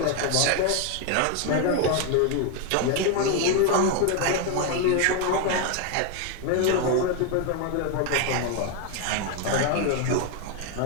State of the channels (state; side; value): different; both; correlation 0.01